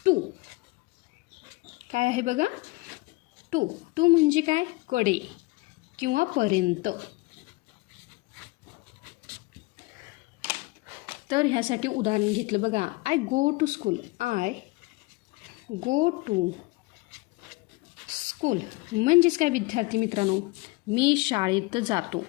टू. काय आहे बघा? टू. टू म्हणजे काय? कडे किंवा पर्यंत. तर ह्यासाठी उदाहरण घेतलं बघा. I go to school. I go to school म्हणजेच काय विद्यार्थी मित्रांनो, मी शाळेत जातो.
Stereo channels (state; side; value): quieter; right; 23.1 dB